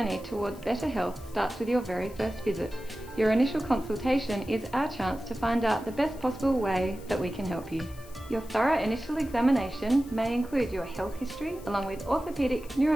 towards better health starts with your very first visit. Your initial consultation is our chance to find out the best possible way that we can help you. Your thorough initial examination may include your health history along with orthopaedic,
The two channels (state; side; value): noise; left; hiss, 22 dB below the sound